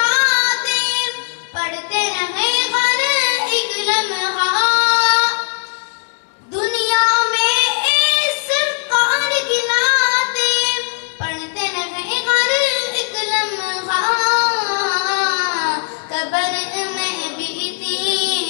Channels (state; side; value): silent; right; digital silence